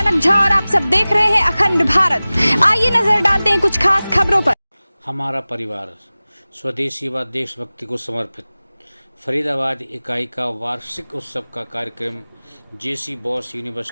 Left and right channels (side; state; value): both; inverted; correlation -0.98